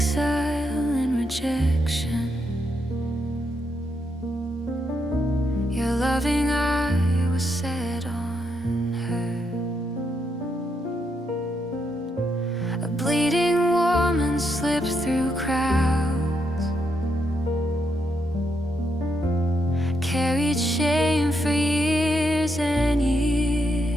and rejection, your loving eye was set on her. A bleeding woman slipped through crowds, carried shame for years and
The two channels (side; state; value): both; normal; correlation 0.80